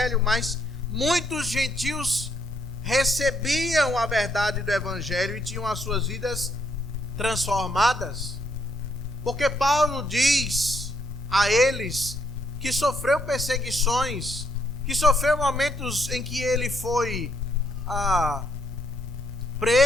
mas muitos gentios recebiam a verdade do evangelho e tinham as suas vidas transformadas. Porque Paulo diz a eles que sofreu perseguições, que sofreu momentos em que ele foi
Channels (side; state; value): right; noise; hum, 23 dB below the sound